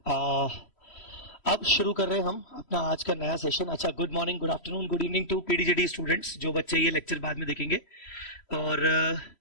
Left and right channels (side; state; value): right; late; 3.1 ms